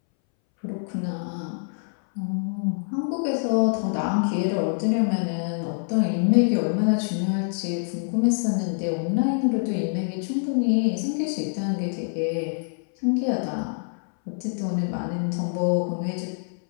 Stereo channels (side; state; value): right; silent; 61 dB below the other